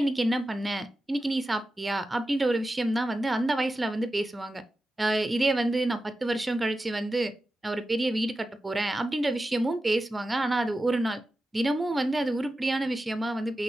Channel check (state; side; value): normal; both; correlation 0.93